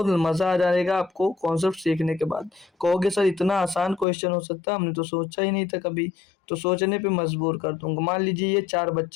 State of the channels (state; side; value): drops out; right; at 4.0 s